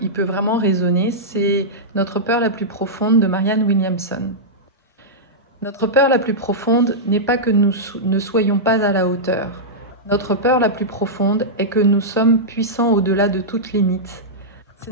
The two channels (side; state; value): both; normal; correlation -0.11